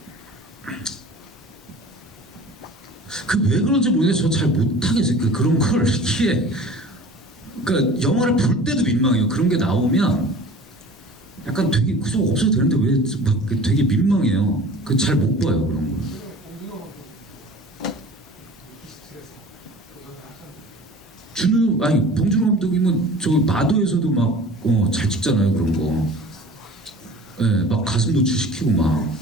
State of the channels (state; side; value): normal; both; correlation 0.42